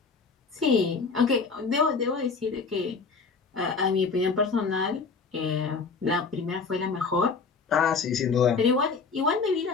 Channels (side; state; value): right; quieter; 4.8 dB